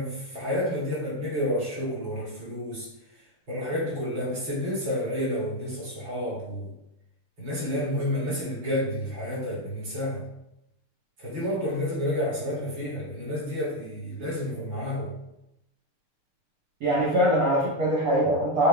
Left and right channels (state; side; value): late; left; 6.7 ms